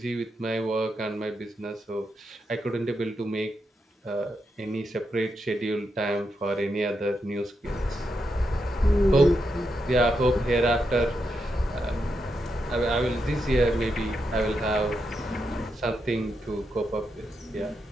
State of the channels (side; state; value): both; normal; correlation 0.84